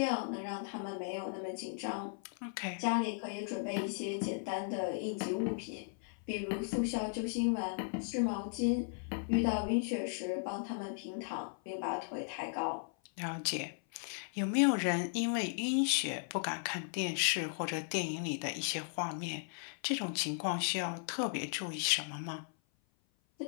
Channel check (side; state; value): right; silent; 54 dB below the other